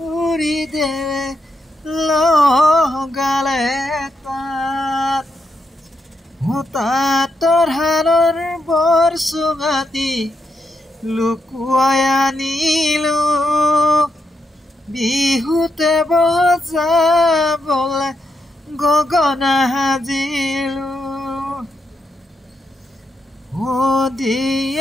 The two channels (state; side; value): normal; both; correlation 0.82